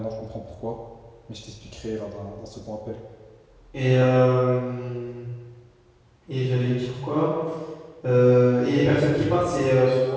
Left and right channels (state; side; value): identical; both; correlation 1.00